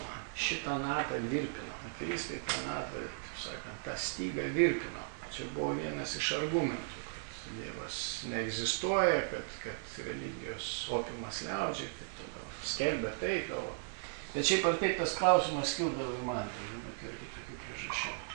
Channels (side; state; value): left; silent; digital silence